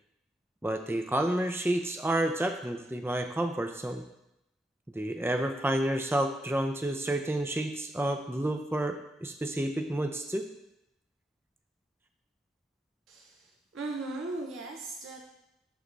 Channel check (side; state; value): both; normal; correlation 0.82